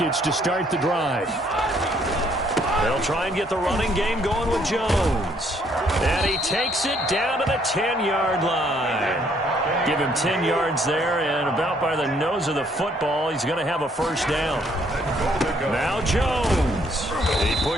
to start the drive. They'll try and get the running game going with Jones. And he takes it down to the 10-yard line. Give him 10 yards there, and about by the nose of the football, he's going to have a 1st down. Now Jones. He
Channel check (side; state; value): both; normal; correlation 0.66